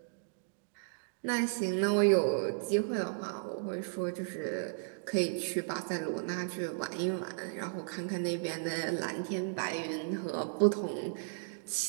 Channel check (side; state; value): left; silent; digital silence